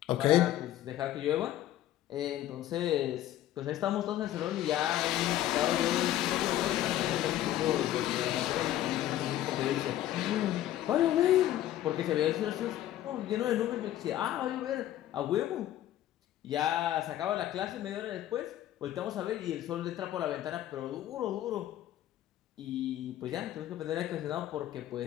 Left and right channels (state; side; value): quieter; right; 13.1 dB